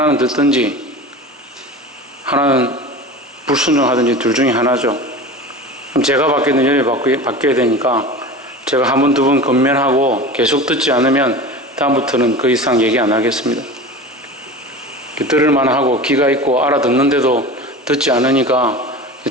듣든지 하나는 불순종하든지 둘 중에 하나죠. 그럼 제가 받게 되는 열이 바뀌어야 되니까 제가 한 번, 두 번 건면하고 계속 듣지 않으면 다음부터는 그 이상 얘기 안 하겠습니다. 들을만 하고 귀가 있고 알아듣는데도 듣지 않으니까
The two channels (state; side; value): normal; both; correlation 0.33